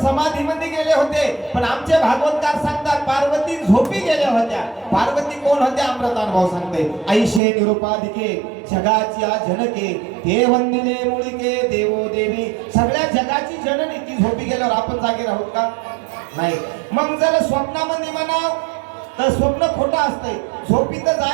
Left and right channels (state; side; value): drops out; left; at 7.4 s